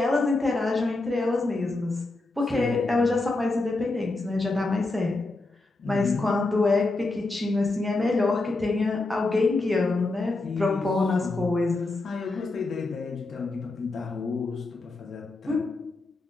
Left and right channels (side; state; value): right; quieter; 3.1 dB